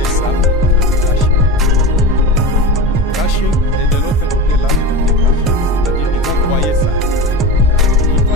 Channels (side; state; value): both; normal; correlation 0.27